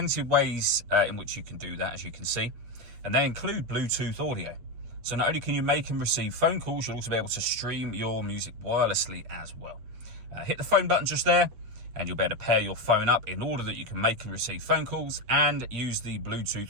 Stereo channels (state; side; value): late; left; 8.4 ms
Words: of ways in which you can do that, as you can see, and they include Bluetooth audio. So not only can you make and receive phone calls, you'll also be able to stream your music wirelessly as well. Hit the phone button just there, and you'll be able to pair your phone up in order that you can make and receive phone calls and use the